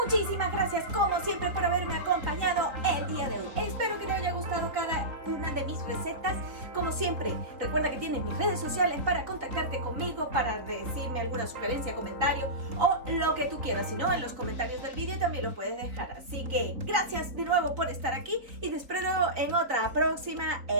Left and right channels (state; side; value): late; left; 3.8 ms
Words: Muchísimas gracias como siempre por haberme acompañado el día de hoy. Espero que te haya gustado cada una de mis recetas. Como siempre, recuerda que tienes mis redes sociales para contactarte conmigo, para decirme alguna sugerencia, comentario o lo que tú quieras. Si no, en los comentarios del vídeo también lo puedes dejar. Así que gracias de nuevo por estar aquí y te espero en otra próxima